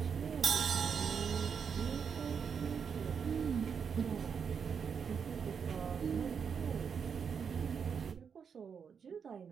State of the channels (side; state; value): left; quieter; 6.7 dB